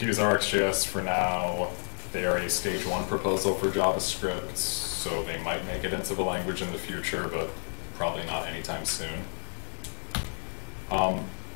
use RxJS for now. They are a stage 1 proposal for JavaScript, so they might make it into the language in the future, but probably not anytime soon.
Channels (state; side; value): silent; right; 58 dB below the other